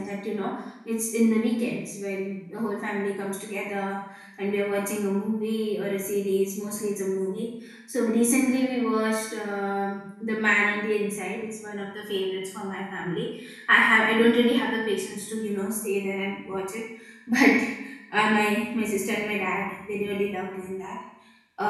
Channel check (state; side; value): identical; both; correlation 1.00